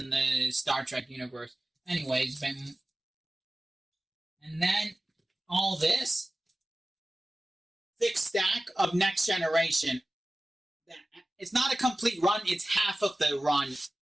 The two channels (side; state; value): both; normal; correlation 0.96